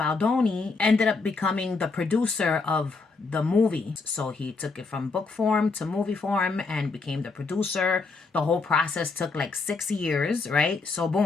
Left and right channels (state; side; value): quieter; right; 4.2 dB